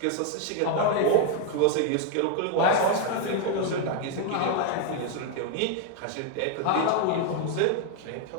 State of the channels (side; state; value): both; different; correlation 0.01